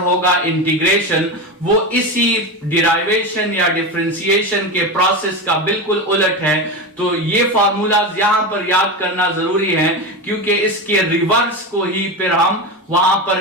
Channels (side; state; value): both; normal; correlation 0.20